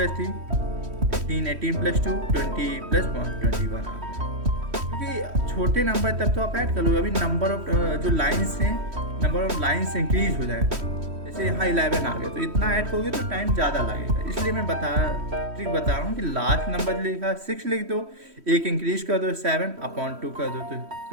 3 18, 18 + 2 20 + 1 21 आ गया। क्योंकि छोटे नंबर तब तो आप ऐड कर लो, अभी नंबर ऑफ जो लाइन्स हैं, नंबर ऑफ लाइन्स इंक्रीज हो जाए। जैसे यहाँ 11 आ गया तो इतना ऐड करोगे तो टाइम ज़्यादा लगेगा, इसलिए मैं ट्रिक बता रहा हूँ कि लास्ट नंबर लिखा 6 लिख दो, एक इंक्रीज कर दो 7/2 कर दो, तो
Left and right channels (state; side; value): late; left; 3.1 ms